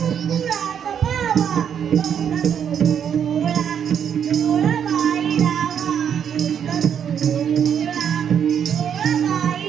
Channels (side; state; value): left; quieter; 8.3 dB